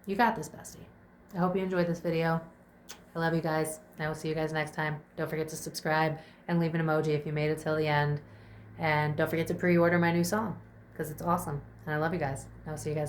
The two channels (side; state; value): both; identical; correlation 1.00